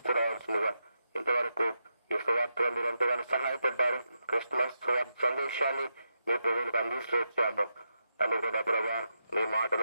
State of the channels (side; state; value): both; inverted; correlation -0.85